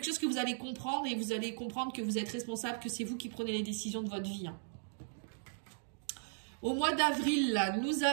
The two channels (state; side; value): silent; left; digital silence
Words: chose que vous allez comprendre, et vous allez comprendre que vous êtes responsable, que c'est vous qui prenez les décisions de votre vie, hein. Au mois d'avril, là, nous